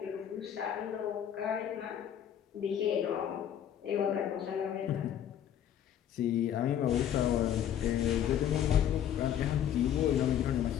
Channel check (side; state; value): right; quieter; 9.9 dB